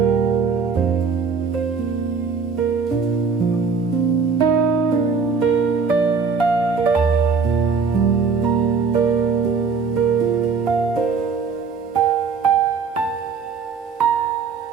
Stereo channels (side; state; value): left; quieter; 5.3 dB